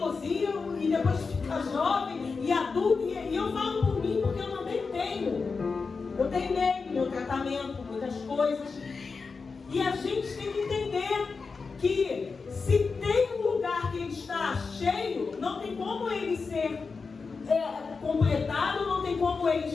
e depois fica jovem e adulta. E eu falo por mim porque eu também tenho. Eu tenho meu tratamento, muitas coisas. E a gente tem que entender que se tem um lugar que ele está cheio, não tem como ele ser completado, não tem como ele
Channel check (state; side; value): quieter; right; 4.7 dB